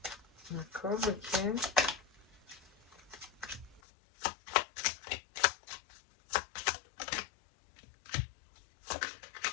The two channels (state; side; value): drops out; right; at 3.8 s